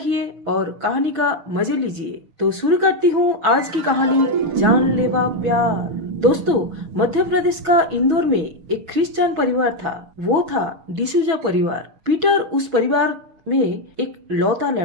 और कहानी का मजे लीजिए। तो शुरू करती हूँ आज की कहानी, जानलेवा प्यार। दोस्तों, मध्य प्रदेश का इंदौर में एक क्रिश्चियन परिवार था। वो था डिसूजा परिवार। पीटर उस परिवार में एक लौता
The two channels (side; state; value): left; late; 6.2 ms